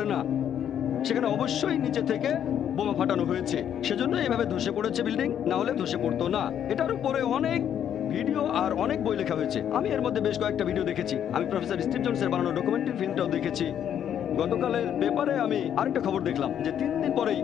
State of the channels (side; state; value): right; quieter; 9.6 dB